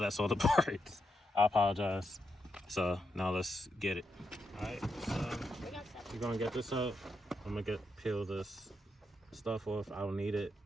all the parts. I apologize. So now let's get it. Alright, so you're going to get this up. I'm going to peel this stuff off. I don't need it.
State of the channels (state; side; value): normal; both; correlation 0.83